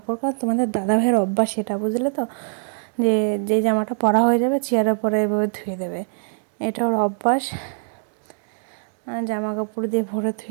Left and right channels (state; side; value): silent; left; digital silence